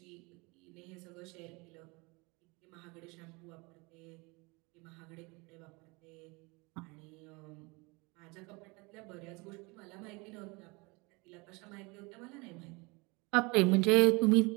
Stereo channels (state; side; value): quieter; left; 26.8 dB